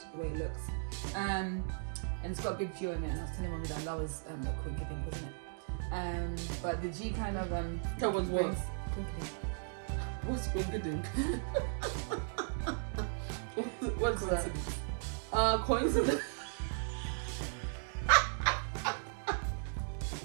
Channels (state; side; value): silent; left; digital silence